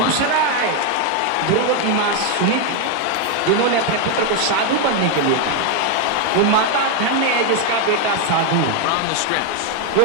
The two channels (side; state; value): both; different; correlation 0.01